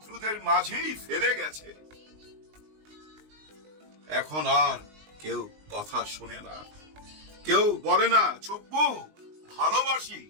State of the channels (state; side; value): late; left; 19 ms